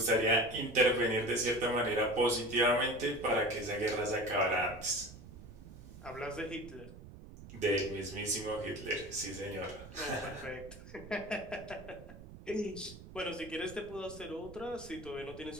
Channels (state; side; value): noise; right; rumble, 16 dB below the sound